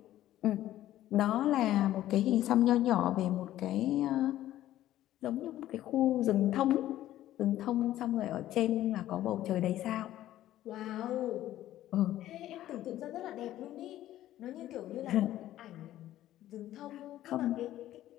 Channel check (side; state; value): right; quieter; 13.6 dB